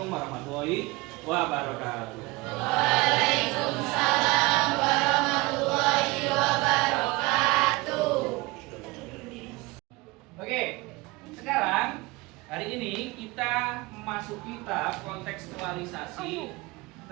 warahmatullahi wabarakatuh. Waalaikumsalam warahmatullahi wabarakatuh. Oke, sekarang hari ini kita memasuki tahap kontekstualisasi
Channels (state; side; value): quieter; left; 23.2 dB